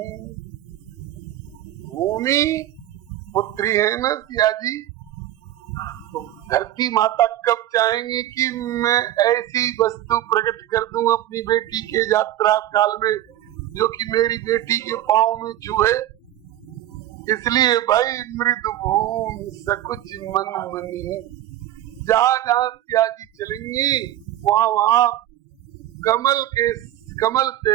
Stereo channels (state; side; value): quieter; left; 13.2 dB